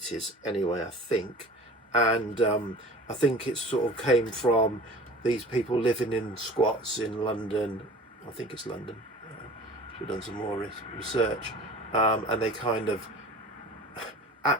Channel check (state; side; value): normal; both; correlation 0.42